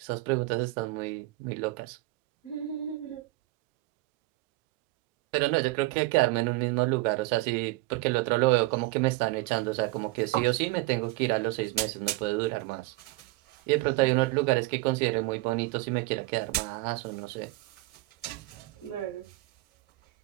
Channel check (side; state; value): left; quieter; 20.2 dB